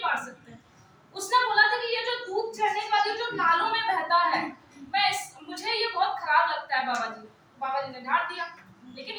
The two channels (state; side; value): identical; both; correlation 1.00